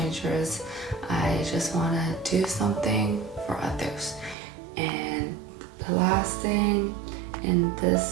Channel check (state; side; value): drops out; left; at 4.4 s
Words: I just want to do something for others. And the last thing in